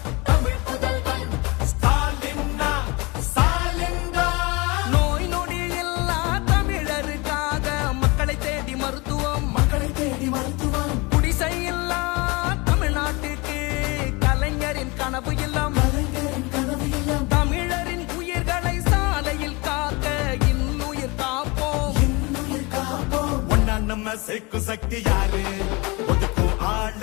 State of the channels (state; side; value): quieter; right; 26.2 dB